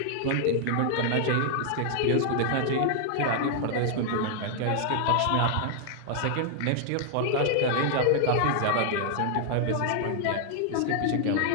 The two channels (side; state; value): both; different; correlation 0.00